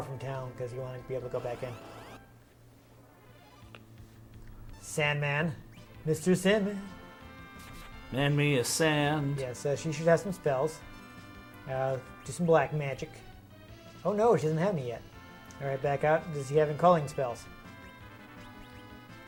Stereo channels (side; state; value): both; identical; correlation 1.00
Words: from town because you want to be able to go back in. Sandman. Mr. Sandman. Man me a sand. Yes, she should have some spells. Do some black magic. Oh no, she doesn't have any yet. Alright, back out. Does he have any calling spells?